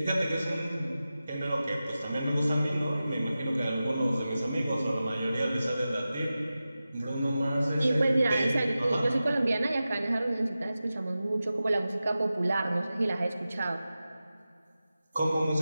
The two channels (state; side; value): inverted; both; correlation -0.94